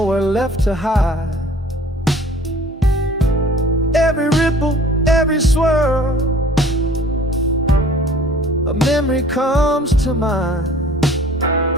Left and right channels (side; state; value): both; normal; correlation 0.50